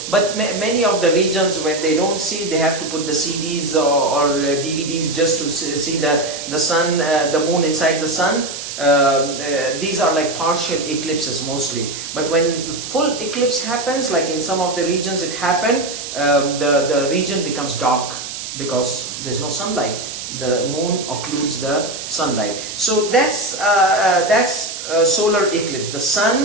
but many of the regions, when they don't see, they have to put the CDs or DVDs just to see the sun, the moon inside the sun. These are like partial eclipses mostly. But when full eclipse happens, like in some of the regions it happened, the region becomes dark because there's no sunlight. The moon occludes the sunlight. So that's solar eclipse. The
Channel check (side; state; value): right; noise; hiss, 8 dB below the sound